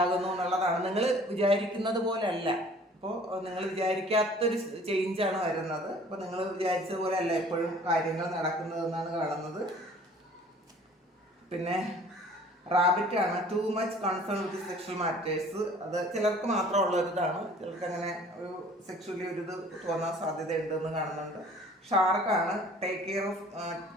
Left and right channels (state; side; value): normal; both; correlation 0.51